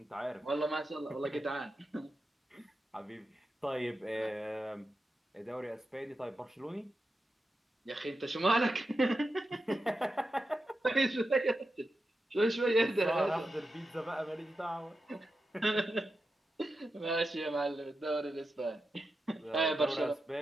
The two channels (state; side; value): normal; both; correlation 0.89